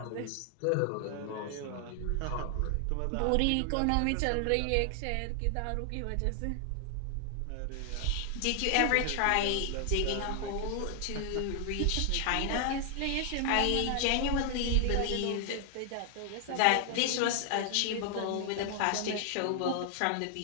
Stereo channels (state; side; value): different; both; correlation 0.00